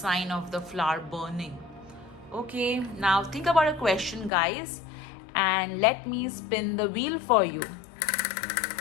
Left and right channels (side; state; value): right; drops out; at 4.3 s